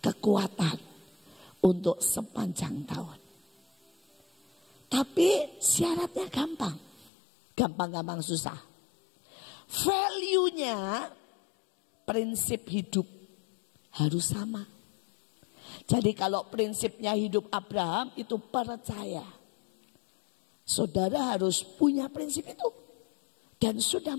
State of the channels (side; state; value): right; drops out; at 7.1 s